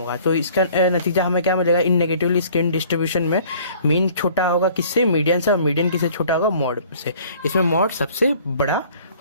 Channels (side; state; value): both; inverted; correlation -0.53